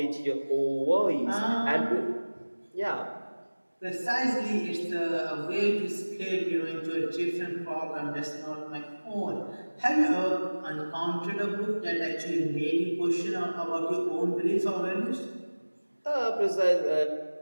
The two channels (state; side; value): inverted; both; correlation -1.00